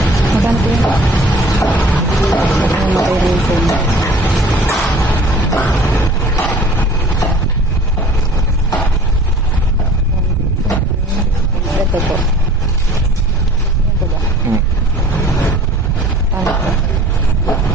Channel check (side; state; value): both; normal; correlation 0.49